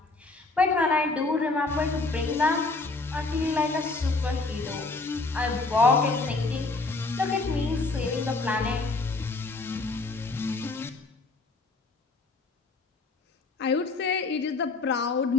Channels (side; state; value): right; quieter; 3.5 dB